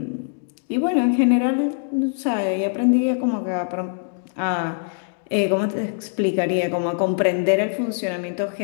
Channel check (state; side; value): silent; right; digital silence